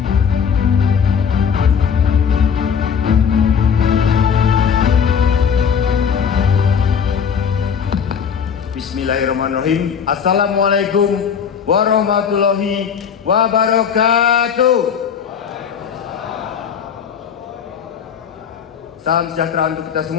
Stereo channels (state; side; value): quieter; right; 7.1 dB